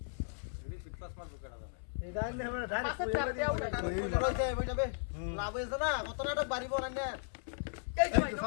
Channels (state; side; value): silent; right; 54 dB below the other